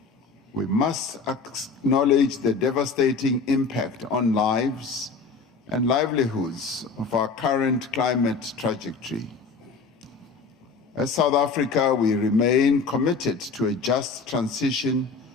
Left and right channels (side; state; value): right; quieter; 4.6 dB